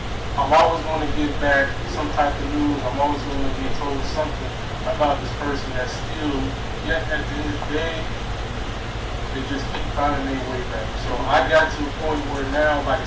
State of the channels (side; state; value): both; identical; correlation 1.00